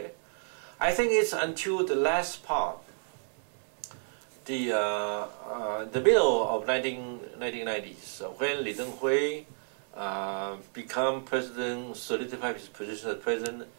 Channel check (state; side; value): silent; left; digital silence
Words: I think it's until the last part, the middle of 1990s, when Li Denghui become president, solidified his position as president,